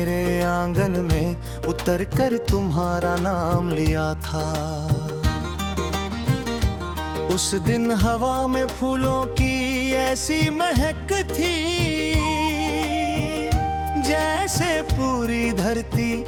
आंगन में उतर कर तुम्हारा नाम लिया था। उस दिन हवा में फूलों की ऐसी महक थी, जैसे पूरी धरती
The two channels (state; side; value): identical; both; correlation 1.00